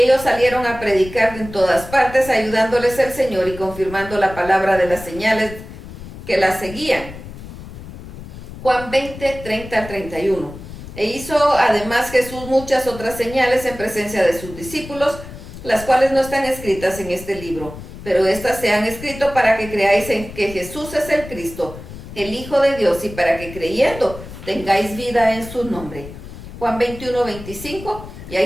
salieron a predicar en todas partes, ayudándoles el Señor y confirmando la palabra de las señales que la seguían. Juan 20, 30 al 31. E hizo además Jesús muchas otras señales en presencia de sus discípulos, las cuales no están escritas en este libro, pero estas se han escrito para que creáis en que Jesús es el Cristo, el Hijo de Dios, y para que creyendo tengáis vida en su nombre. Juan 21, 25. Y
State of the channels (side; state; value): left; noise; rumble, 13 dB below the sound